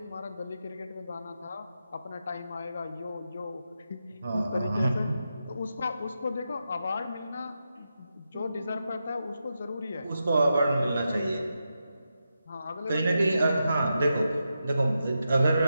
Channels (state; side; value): inverted; both; correlation -0.87